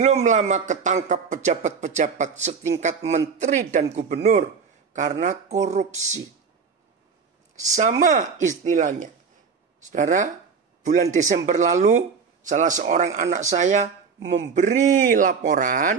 lama ketangkap pejabat-pejabat setingkat menteri dan gubernur karena korupsi. Sama istilahnya. Saudara, bulan Desember lalu salah seorang anak saya memberi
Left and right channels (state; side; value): quieter; left; 5.6 dB